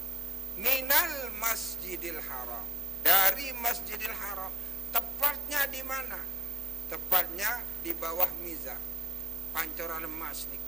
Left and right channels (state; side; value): normal; both; correlation 0.88